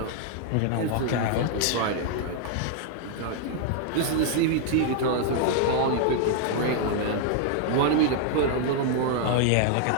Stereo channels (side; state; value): both; different; correlation 0.00